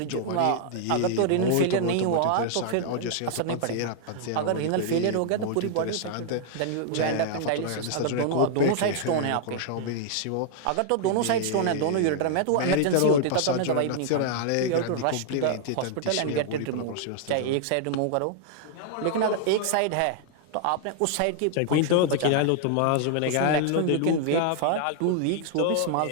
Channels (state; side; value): different; both; correlation -0.01